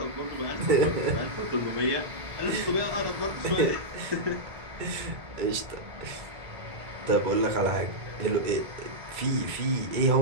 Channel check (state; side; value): late; left; 2.2 ms